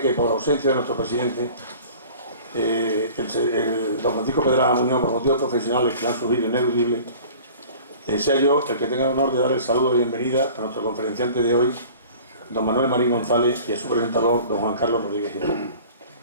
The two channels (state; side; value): inverted; both; correlation -0.44